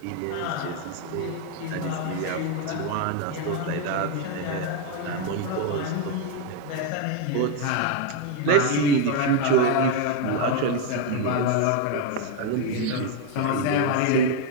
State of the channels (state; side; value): different; both; correlation 0.01